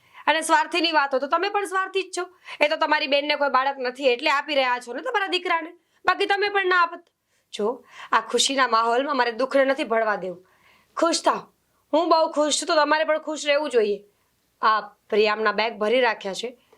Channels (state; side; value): identical; both; correlation 1.00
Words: અને સ્વાર્થીની વાત હોય તો તમે પણ સ્વાર્થી જ છો. એ તો તમારી બેનને કોઈ બાળક નથી એટલે આપી રહ્યા છો ને તમારા દીકરાને, બાકી તમે પણ ના આપત. જો આ ખુશીના માહોલમાં મારે દુઃખને નથી ભળવા દેવું. ખુશ થાવ. હું બહુ ખુશ છું તો તમારે પણ ખુશ રહેવું જોઈએ. આ પ્રિયામના બેગ ભરી રાખ્યા છે,